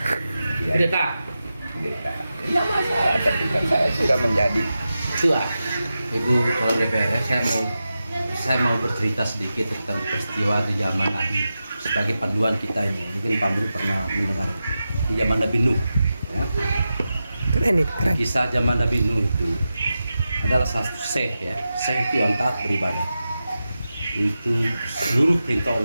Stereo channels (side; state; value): both; inverted; correlation -0.92